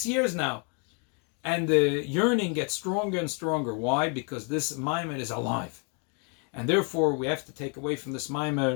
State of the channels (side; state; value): right; quieter; 37.3 dB